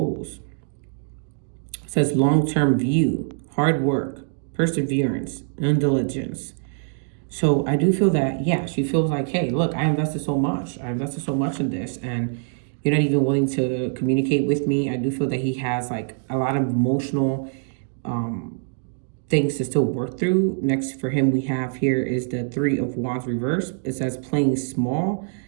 It says long-term view, hard work, perseverance, and diligence. So I do feel that, yeah, she feels like, hey, look, I invested so much. I invested so much in this, and you're not even willing to communicate with me. I do feel that he has like a lot of emotional things to still work through. Next for him, we have here is the Three of Wands reverse. It says playing small,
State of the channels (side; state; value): left; silent; digital silence